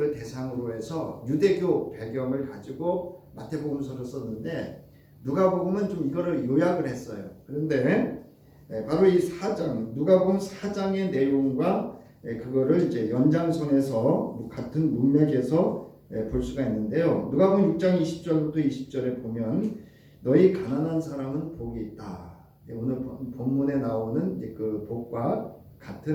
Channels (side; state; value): both; identical; correlation 1.00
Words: 대상으로 해서 유대교 배경을 가지고 마태복음서를 썼는데 누가복음은 좀 이거를 요약을 했어요. 그런데 바로 이 4장, 누가복음 4장의 내용과 그거를 이제 연장선에서 같은 문맥에서 볼 수가 있는데요. 누가복음 6장 20절부터 20절에 보면 너희 가난한 사람은 복이 있다. 오늘 본문에 나오는 그 복과